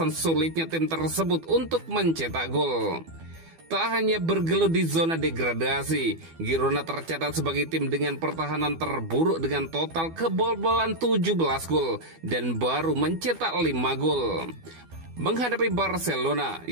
sulitnya tim tersebut untuk mencetak gol. Tak hanya bergelut di zona degradasi, Girona tercatat sebagai tim dengan pertahanan terburuk dengan total kebobolan 17 gol dan baru mencetak 5 gol. Menghadapi Barcelona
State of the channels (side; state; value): left; late; 12 ms